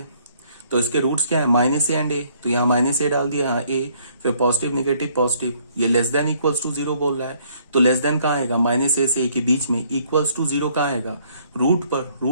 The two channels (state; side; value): inverted; both; correlation -0.64